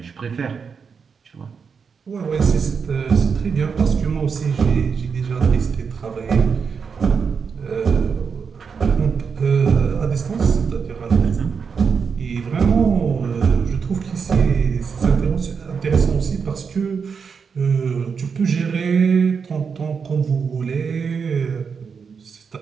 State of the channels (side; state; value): left; quieter; 5.9 dB